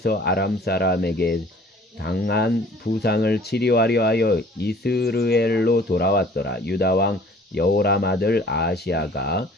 아람 사람에게 당한 부상을 치료하려 하여 이스르엘로 돌아왔더라. 유다 왕 여호람 아들 아하시야가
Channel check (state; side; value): normal; both; correlation 0.52